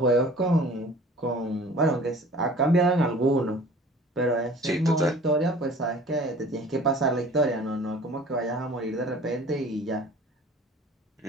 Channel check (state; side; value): normal; both; correlation 0.47